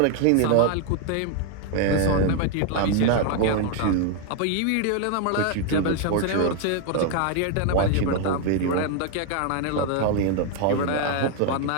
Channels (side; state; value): both; different; correlation 0.01